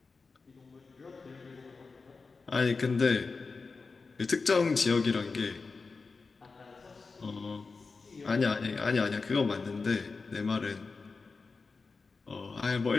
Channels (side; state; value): right; quieter; 4.3 dB